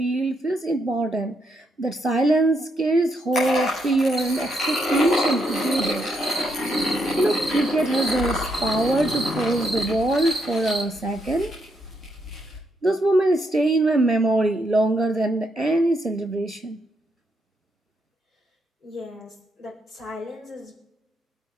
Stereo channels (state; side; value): normal; both; correlation 0.78